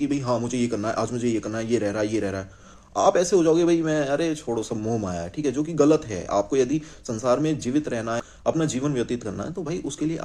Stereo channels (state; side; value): identical; both; correlation 1.00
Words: कि भाई हाँ मुझे ये करना है, आज मुझे ये करना है, ये रह रहा है, ये रह रहा है, आप ऐसे हो जाओगे भाई मैं, अरे छोड़ो सब मोह माया है, ठीक है, जो कि गलत है। आपको यदि संसार में जीवित रहना है, अपना जीवन व्यतीत करना है, तो भाई उसके लिए